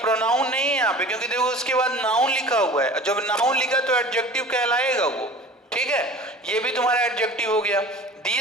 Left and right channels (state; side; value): normal; both; correlation 0.41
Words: नहीं है यहाँ पे, क्योंकि देखो उसके बाद नाउन लिखा हुआ है, जब नाउन लिखा तो एडजेक्टिव कहलाएगा वो, ठीक है, ये भी तुम्हारा एडजेक्टिव हो गया।